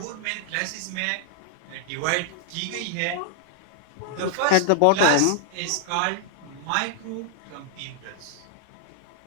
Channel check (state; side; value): different; both; correlation 0.00